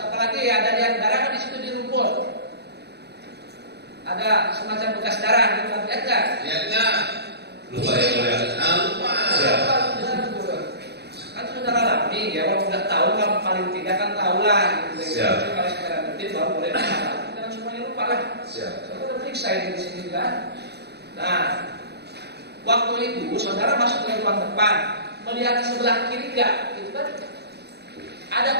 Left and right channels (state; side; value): late; left; 0.48 ms